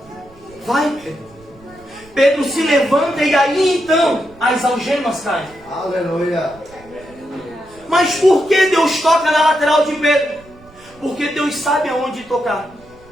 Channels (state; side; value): noise; right; rumble, 26 dB below the sound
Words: vai Pedro. Pedro se levanta e aí então as algemas caem. Aleluia. Mas por que Deus toca na lateral de Pedro? Porque Deus sabe aonde tocar.